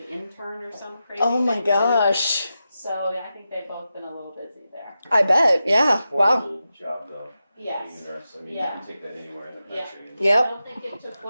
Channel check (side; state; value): both; inverted; correlation -0.91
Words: intern or some crazy. Oh my thing too. gosh. So yeah, I think they've both been a little busy there. I bet. Yeah. Poor Wow. little job though. Yes. being a nurse. I mean, you Yeah. can take that anywhere in the Yeah. country. And- I Yep. don't think it took,